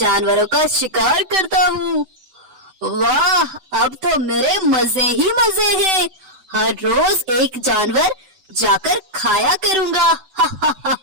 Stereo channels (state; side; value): late; left; 7.8 ms